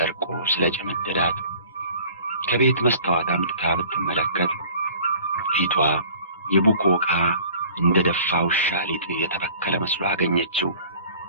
ስለጨመደዳት ከቤት መስታወት አምጥታ ብትመለከት ፊቷ የቡኮ ዕቃ እንደ ደፋ ውሻ ሊጥ የተበከለ መስሎ አገኘችው።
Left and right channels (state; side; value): inverted; both; correlation -0.49